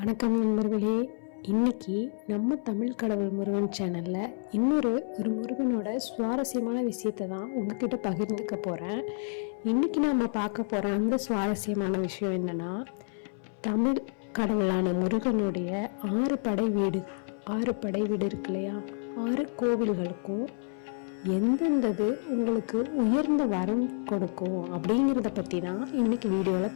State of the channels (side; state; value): right; silent; 58 dB below the other